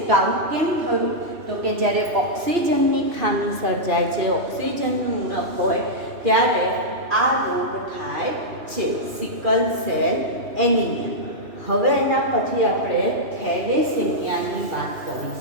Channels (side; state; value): left; late; 2.9 ms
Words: તો આવું કેમ થયું? તો કે જ્યારે ઓક્સિજનની ખામી સર્જાય છે, ઓક્સિજનનું ઉણપ હોય ત્યારે આ રોગ થાય છે, સિકલ સેલ એનિમિયા. હવે એના પછી આપણે થેલેસેમિયાની વાત